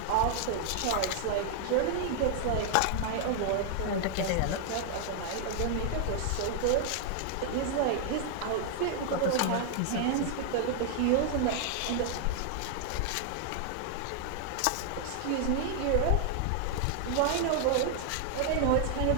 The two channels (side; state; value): both; different; correlation 0.00